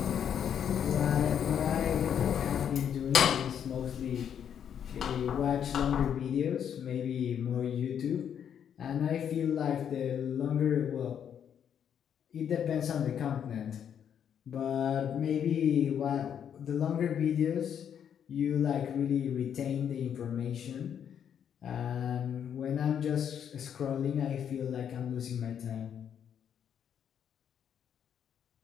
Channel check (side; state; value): right; quieter; 8.6 dB